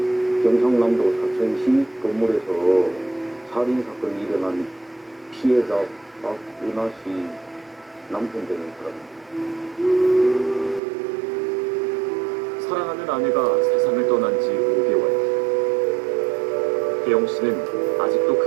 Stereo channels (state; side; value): drops out; left; at 10.8 s